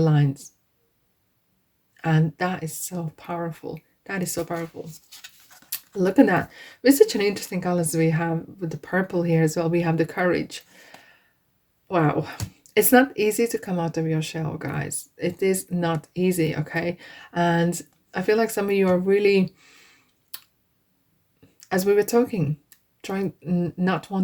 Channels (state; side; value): identical; both; correlation 1.00